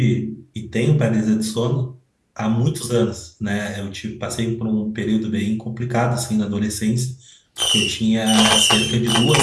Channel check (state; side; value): identical; both; correlation 1.00